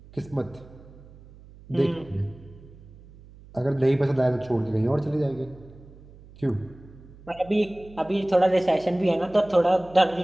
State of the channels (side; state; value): right; noise; hum, 21 dB below the sound